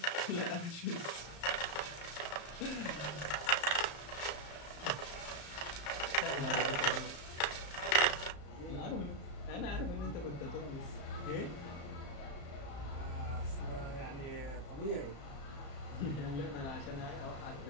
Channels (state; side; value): late; right; 34 ms